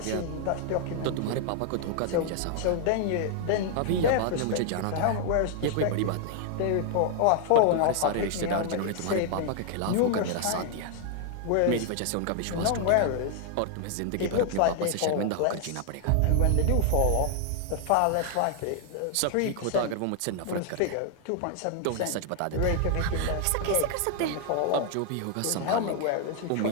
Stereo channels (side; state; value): both; different; correlation 0.00